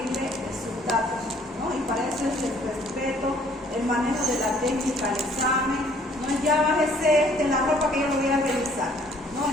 sus datos, ¿no? Y para eso es el respeto, el manejo de la técnica, el examen, no es ya bájese la ropa que yo lo voy a revisar, ¿no?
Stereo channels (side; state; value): both; normal; correlation 0.60